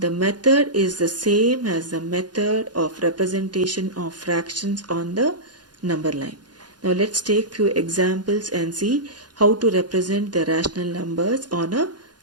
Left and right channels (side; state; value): left; late; 0.70 ms